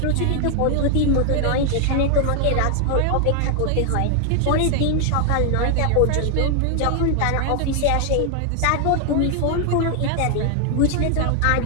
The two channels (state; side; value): different; both; correlation 0.00